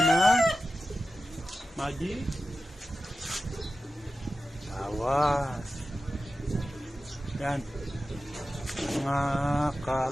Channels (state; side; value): normal; both; correlation 0.93